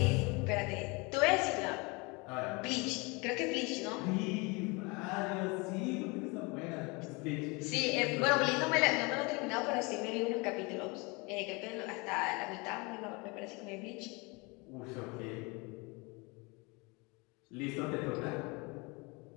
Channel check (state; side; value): quieter; right; 27.7 dB